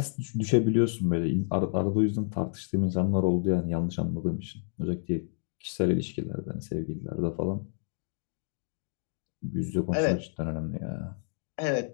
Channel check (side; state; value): right; silent; 58 dB below the other